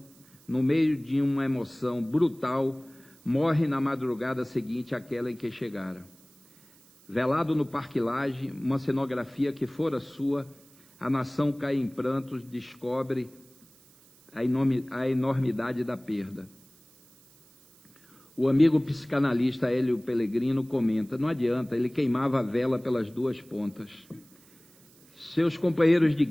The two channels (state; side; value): noise; right; hiss, 27 dB below the sound